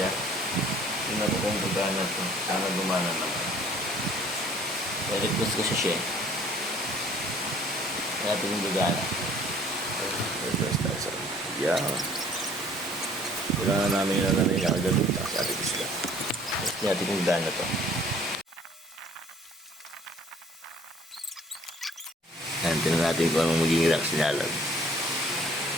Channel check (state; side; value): normal; both; correlation 0.55